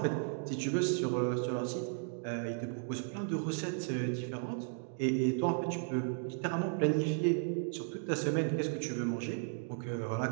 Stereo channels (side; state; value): left; silent; 54 dB below the other